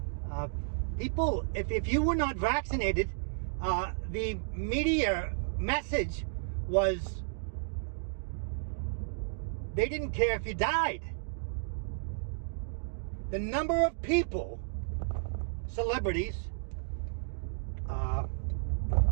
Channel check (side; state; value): left; silent; digital silence